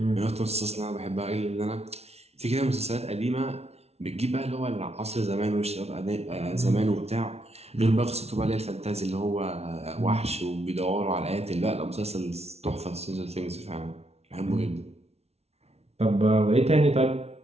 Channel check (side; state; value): left; late; 0.31 ms